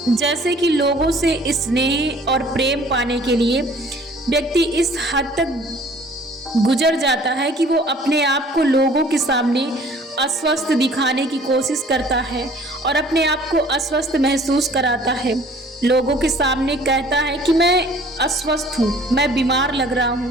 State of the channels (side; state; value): both; normal; correlation 0.53